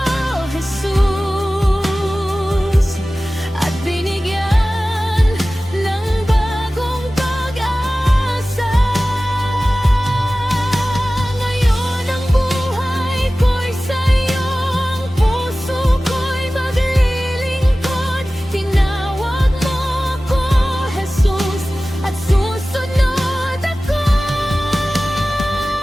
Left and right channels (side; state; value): both; normal; correlation 0.96